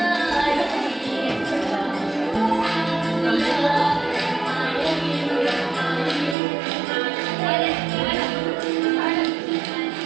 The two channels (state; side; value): drops out; left; at 6.4 s